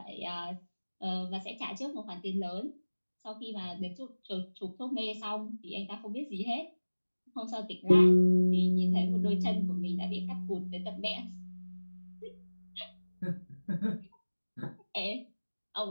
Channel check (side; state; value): both; inverted; correlation -1.00